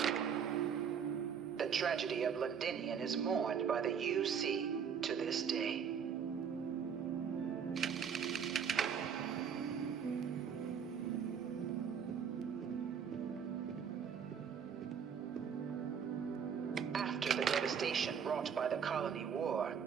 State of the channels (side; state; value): left; quieter; 7.3 dB